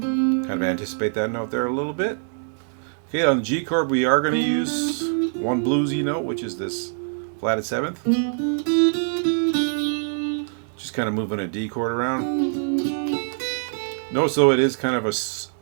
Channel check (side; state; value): left; silent; 63 dB below the other